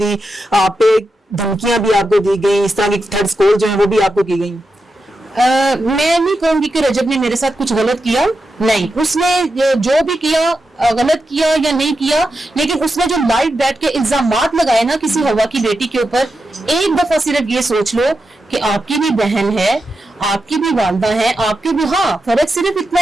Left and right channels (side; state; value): both; normal; correlation 0.88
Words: आप पे धमकियां भी आपको दी गई, इस तरह की थ्रेड्स कॉल जो है वो भी आपको की गई? मैं नहीं कहूंगी कि रजब ने मेरे साथ कुछ गलत किया, नहीं। उसने जो भी किया, गलत किया या नहीं किया, लेकिन उसने जो लाइव बैठ के इल्जामात लगाए ना किसी हवा की बेटी के ऊपर, एक दफा सिर्फ ये सोच लो कि आपकी भी बहन है, आपकी भी वालदा है, आपकी भी, हाँ फर्क सिर्फ इतना